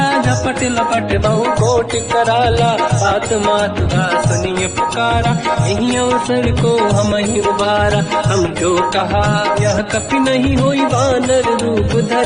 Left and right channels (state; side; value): identical; both; correlation 1.00